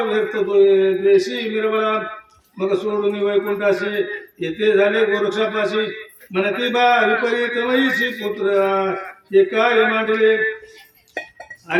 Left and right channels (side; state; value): both; identical; correlation 1.00